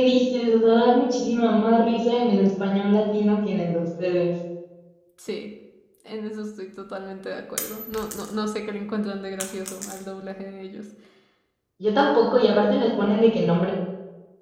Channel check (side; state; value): both; identical; correlation 1.00